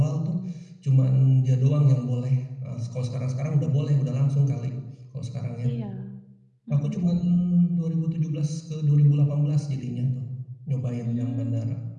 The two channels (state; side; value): identical; both; correlation 1.00